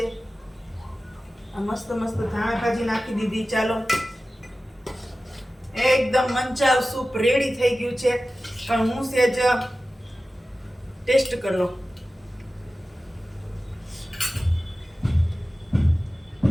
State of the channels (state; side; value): normal; both; correlation 0.95